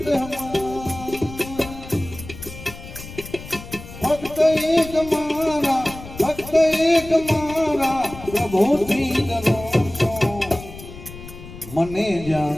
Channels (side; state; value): left; noise; rumble, 14 dB below the sound